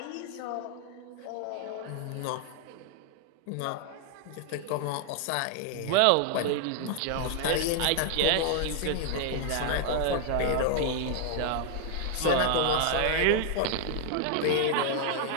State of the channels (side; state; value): both; different; correlation 0.00